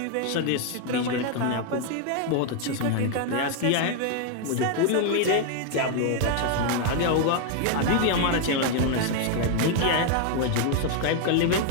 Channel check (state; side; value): different; both; correlation 0.00